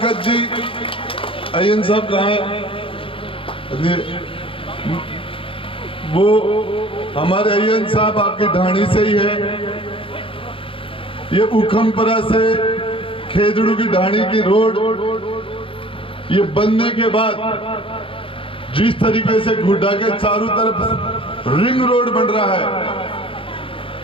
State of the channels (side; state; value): right; late; 0.26 ms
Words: जी अयन साहब कहाँ है? वो हमारे अयन साहब आपकी ढाणी से ही है। ये हुक्मपुरा से खेतड़ू की ढाणी की रोड ये बनने के बाद जिस तरीके से गुड्डा के चारों तरफ रिंग रोड बन रहा है,